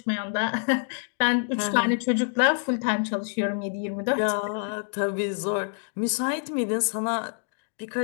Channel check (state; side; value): silent; right; 55 dB below the other